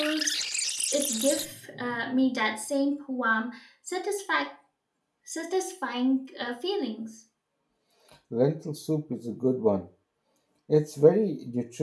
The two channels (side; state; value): both; identical; correlation 1.00